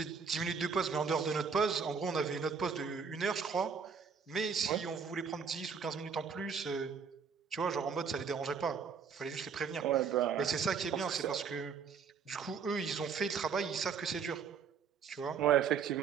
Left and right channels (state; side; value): quieter; left; 6.2 dB